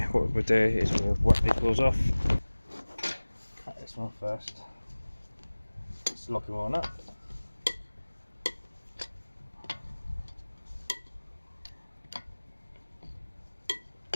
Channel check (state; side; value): inverted; both; correlation -1.00